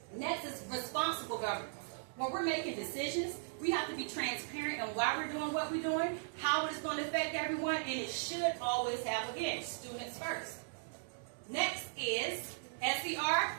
Next is responsible governance. When we're making decisions, we have to be transparent on why we're doing what we're doing, how it's going to affect everyone, and it should always have, again, students first. Next is SER,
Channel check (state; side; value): silent; left; digital silence